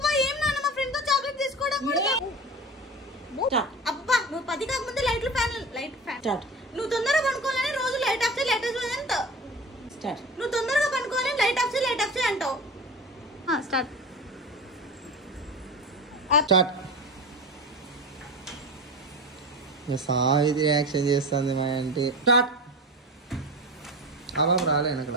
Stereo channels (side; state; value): both; normal; correlation 0.30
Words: ఏం నాన్న మా ఫ్రెండ్ తో చాక్లెట్ తీసుకోవడం కూడా అబ్బబ్బా నువ్వు 10 కాకముందే లైట్ ఫ్యాన్ నువ్వు తొందరగా పనుకోవాలని రోజు లైట్ ఆఫ్ చేయి అంటావు. నువ్వు తొందరగా పనుకోవాలని లైట్ ఆఫ్ చేయి అంటావు. సాహితి రియాక్షన్ చేస్తుంది మా అంటే అలా రాలేను